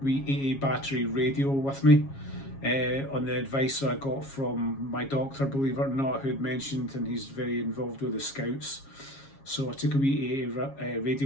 wee AA battery radio with me, on the advice I got from my doctor, believe it or not, who had mentioned, and he's very involved with the Scouts. So I took a wee AA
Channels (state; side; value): late; right; 7.3 ms